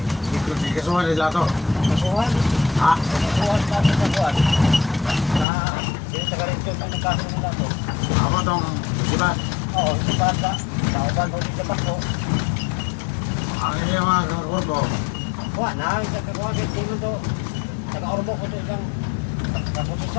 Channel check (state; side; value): drops out; right; at 5.5 s